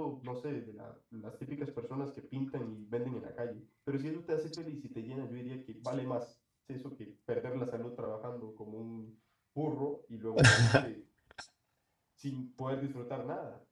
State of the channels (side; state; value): both; identical; correlation 1.00